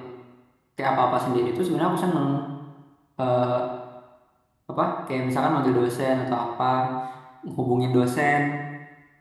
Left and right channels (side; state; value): both; identical; correlation 1.00